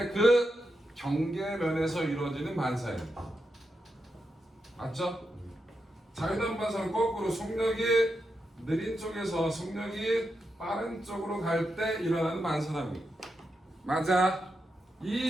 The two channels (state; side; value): normal; both; correlation 0.86